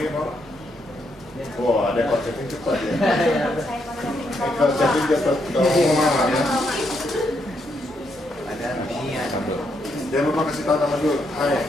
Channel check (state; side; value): normal; both; correlation 0.78